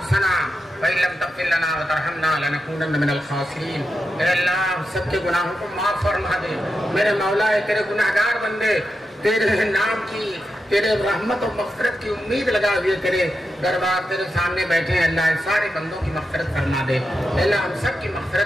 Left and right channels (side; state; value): both; normal; correlation 0.88